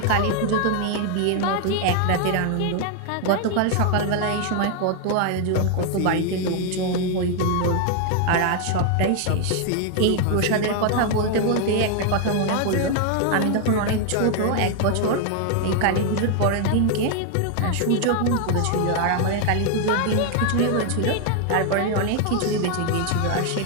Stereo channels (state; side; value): different; both; correlation 0.00